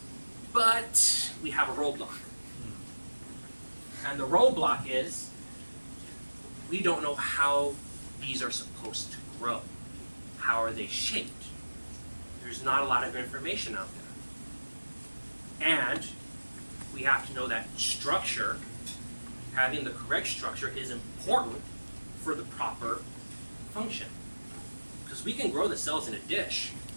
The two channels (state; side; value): inverted; both; correlation -1.00